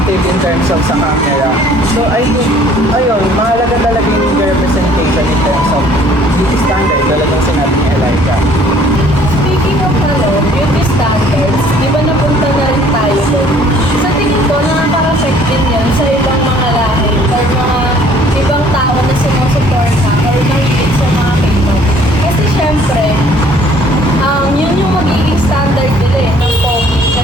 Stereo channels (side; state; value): both; normal; correlation 0.57